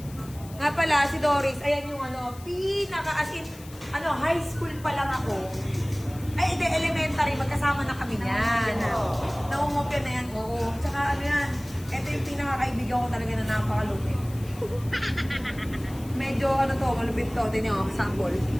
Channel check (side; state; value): left; noise; hiss, 20 dB below the sound